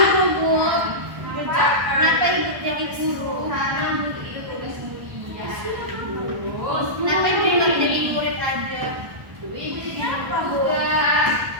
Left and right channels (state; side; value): late; left; 1.1 ms